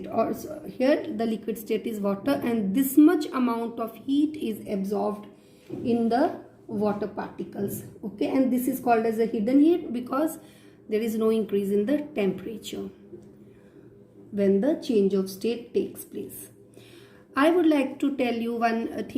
or here the liquid state is water, and this much amount of heat is absorbed in the water particles. Okay, and this is called as a hidden heat because there is no increase in the temperature when the change of state takes place. I would like to tell you one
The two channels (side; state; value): both; identical; correlation 1.00